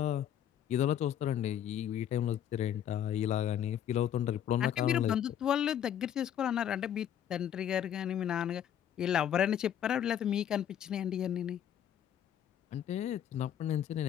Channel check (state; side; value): quieter; right; 9.9 dB